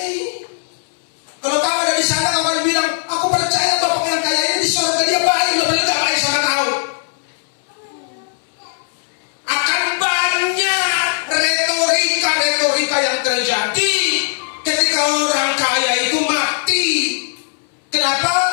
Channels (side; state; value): right; silent; 66 dB below the other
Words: Kalau kau ada di sana, kau akan bilang, aku percaya Bapak yang kaya ini di surga dia baik, lo paling gak baik sama tahu. Akan banyak retorika yang terjadi ketika orang kaya itu mati. Kenapa?